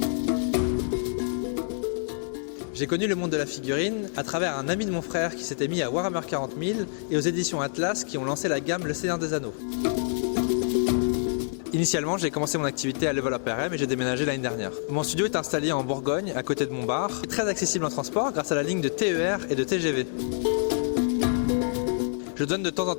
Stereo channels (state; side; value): silent; right; 60 dB below the other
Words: J'ai connu le monde de la figurine à travers un ami de mon frère qui s'était mis à Warhammer 40 000 et aux éditions Atlas qui ont lancé la gamme Le Seigneur des Anneaux. Initialement, j'ai commencé mon activité à Level Up RM et j'ai déménagé l'année dernière. Mon studio est installé en Bourgogne, à côté de Montbard, et très accessible en transport grâce à la ligne de TER et de TGV. Je donne de temps en